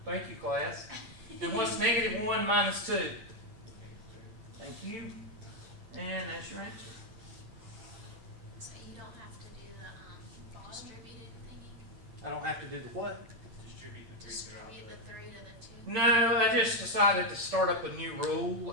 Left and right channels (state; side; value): late; left; 8.9 ms